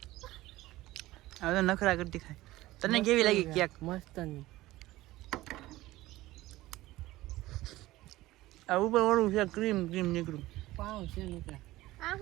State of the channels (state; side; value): quieter; left; 17.4 dB